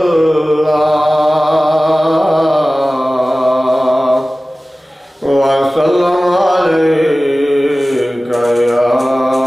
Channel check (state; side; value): normal; both; correlation 0.97